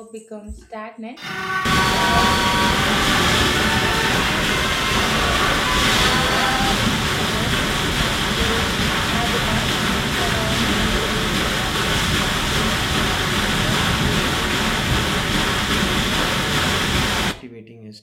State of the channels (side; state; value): both; identical; correlation 1.00